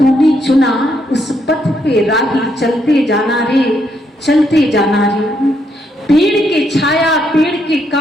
चुना, उस पथ पे राही चलते जाना रे, चलते जाना रे। पेड़ के छाया पेड़ के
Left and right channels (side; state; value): both; normal; correlation 0.76